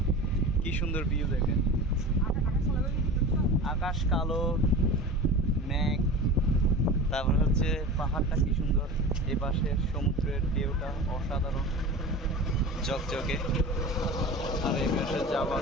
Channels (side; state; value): both; normal; correlation 0.33